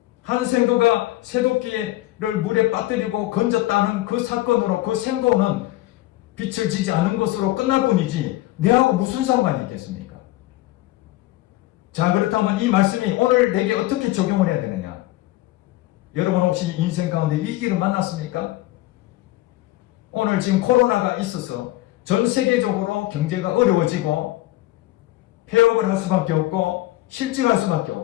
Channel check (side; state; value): right; quieter; 17.0 dB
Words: 한 생도가 새도끼를 물에 빠뜨리고 건졌다는 그 사건으로 그 생도는 빛을 지지 않은 것으로 끝날 뿐이지 내하고 무슨 상관이 있겠습니까? 자, 그렇다면 이 말씀이 오늘 내게 어떻게 적용을 해야 되느냐? 여러분 혹시 인생 가운데 위기를 만났습니까? 오늘 지금 코로나가 있어서 전 세계적으로 경제가 어려워지고 폐업을 할 수밖에 없고 실직할 수밖에